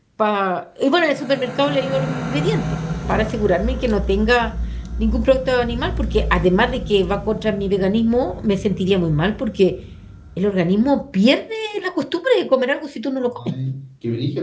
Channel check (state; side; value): identical; both; correlation 1.00